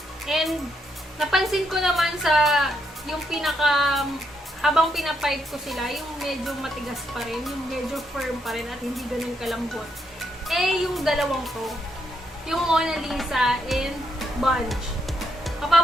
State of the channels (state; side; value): normal; both; correlation 0.77